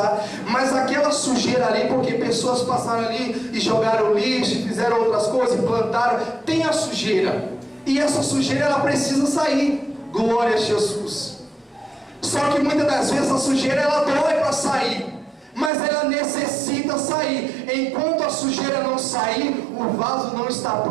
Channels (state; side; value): drops out; left; at 15.7 s